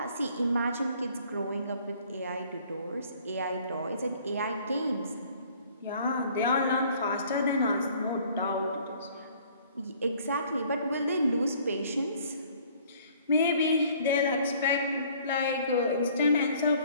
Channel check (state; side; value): inverted; both; correlation -0.57